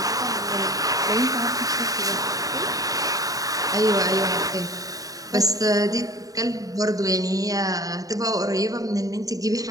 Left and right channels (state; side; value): late; left; 0.17 ms